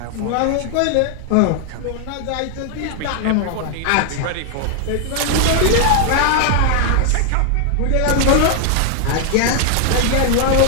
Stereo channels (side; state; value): both; different; correlation 0.00